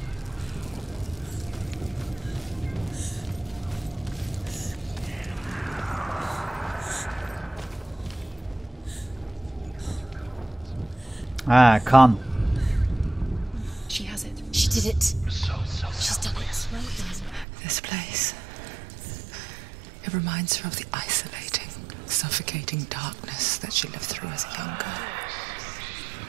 Ha, kan. She has it. She did it. She's done it. This place. It reminds her of the isolating, suffocating darkness that she lived through as a young girl.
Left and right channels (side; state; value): left; drops out; at 17.4 s